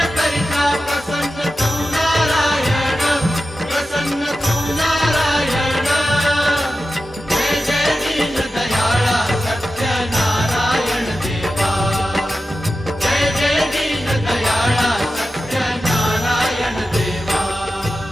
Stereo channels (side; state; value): both; normal; correlation 0.92